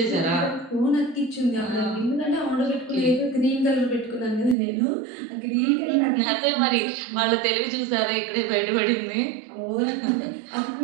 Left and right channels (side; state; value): left; drops out; at 4.5 s